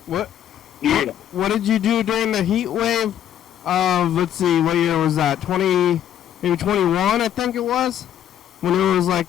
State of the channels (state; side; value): quieter; right; 10.4 dB